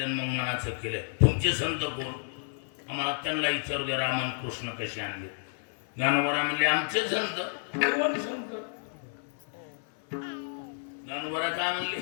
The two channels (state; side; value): silent; right; 58 dB below the other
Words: मग मनाचं केलं. तुमचे संत कोण? आम्हाला त्यांना विचारू दे. रामन कृष्ण कसे आणले? ज्ञानोबा म्हणले आमचे संत. कोण संत? ज्ञानोबा काय म्हणले?